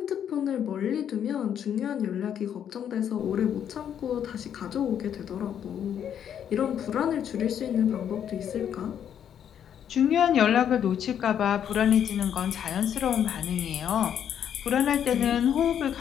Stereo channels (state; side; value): quieter; right; 9.2 dB